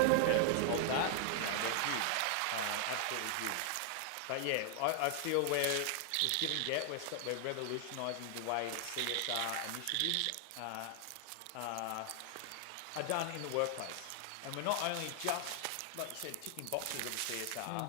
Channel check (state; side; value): different; both; correlation 0.00